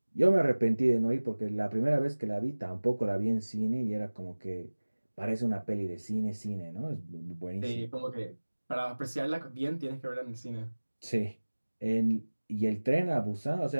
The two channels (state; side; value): inverted; both; correlation -1.00